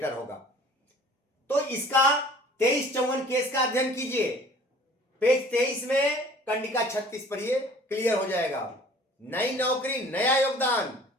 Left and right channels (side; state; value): both; normal; correlation 0.49